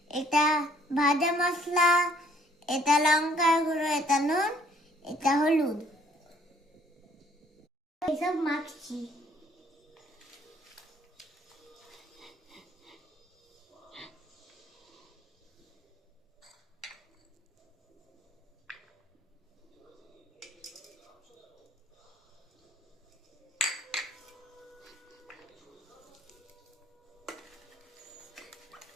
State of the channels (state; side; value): normal; both; correlation 0.61